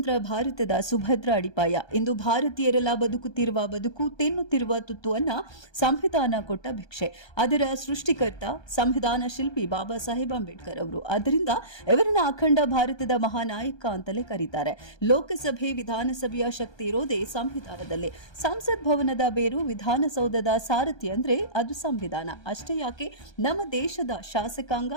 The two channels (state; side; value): late; right; 1.2 ms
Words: ಭಾರತದ ಸುಭದ್ರ ಅಡಿಪಾಯ. ಇಂದು ಭಾರತೀಯರೆಲ್ಲ ಬದುಕುತ್ತಿರುವ ಬದುಕು, ತಿನ್ನುತ್ತಿರುವ ತುತ್ತುವನ್ನ ಸಂವಿಧಾನ ಕೊಟ್ಟ ಭಿಕ್ಷೆ. ಅದರ ಸೃಷ್ಟಿಕರ್ತ ಸಂವಿಧಾನ ಶಿಲ್ಪಿ ಬಾಬಾ ಸಾಹೇಬ್ ಅಂಬೇಡ್ಕರ್ ಅವರು. ಆದ್ದರಿಂದ ಇವರನ್ನ ಅಖಂಡ ಭಾರತದ ಮಹಾನಾಯಕ ಅಂತಲೇ ಕರೀತಾರೆ. ಲೋಕಸಭೆ ವಿಧಾನಸಭೆಯ ಶಕ್ತಿ ಇರೋದೇ ಸಂವಿಧಾನದಲ್ಲಿ. ಸಂಸತ್ ಭವನದ ಬೇರು ವಿಧಾನಸೌಧದ ಸಾರಥಿ ಅಂದ್ರೆ ಅದು ಸಂವಿಧಾನ. ಅಷ್ಟೇ ಯಾಕೆ, ನಮ್ಮ ದೇಶದ ಶಾಸಕಾಂಗ,